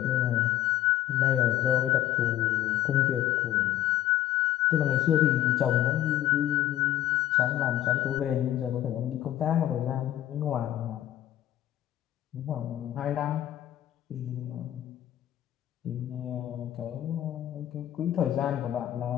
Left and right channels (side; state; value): right; quieter; 12.8 dB